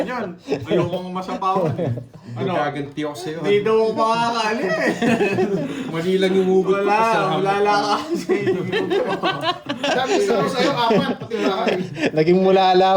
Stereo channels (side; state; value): both; identical; correlation 1.00